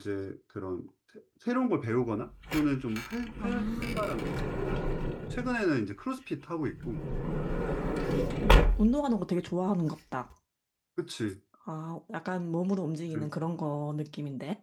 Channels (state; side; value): identical; both; correlation 1.00